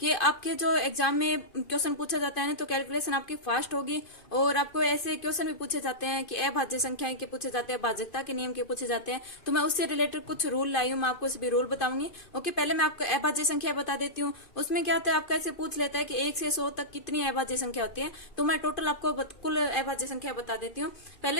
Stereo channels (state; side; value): late; right; 2.5 ms